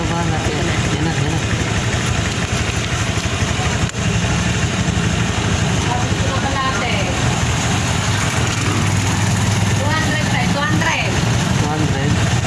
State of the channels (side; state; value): both; identical; correlation 1.00